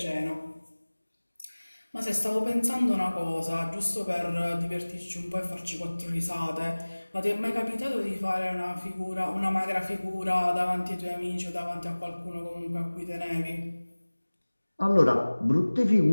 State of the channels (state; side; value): inverted; both; correlation -1.00